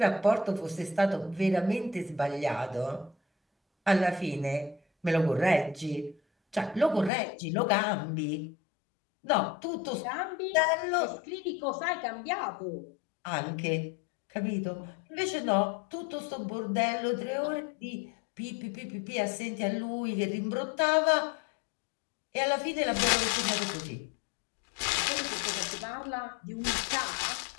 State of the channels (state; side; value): drops out; right; at 7.1 s